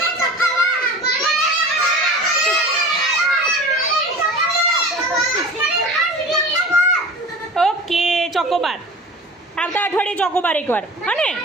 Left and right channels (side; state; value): both; normal; correlation 0.38